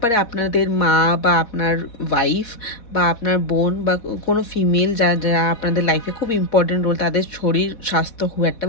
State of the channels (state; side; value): late; right; 4.1 ms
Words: পারে আপনাদের মা বা আপনার ওয়াইফ বা আপনার বোন বা কোনো ফিমেল যারা আপনাদের লাইফে খুব ইম্পর্টেন্ট রোল, তাদের শরীর স্বাস্থ্য খুব একটা